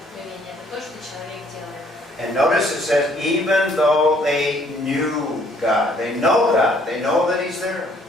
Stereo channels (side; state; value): both; normal; correlation 0.63